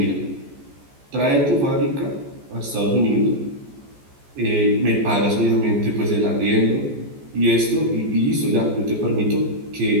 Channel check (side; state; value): left; late; 14 ms